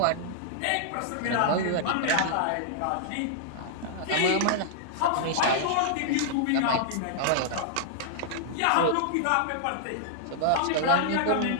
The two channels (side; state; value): both; different; correlation -0.01